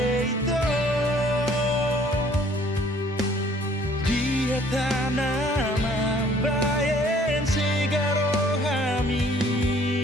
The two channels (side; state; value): both; normal; correlation 0.58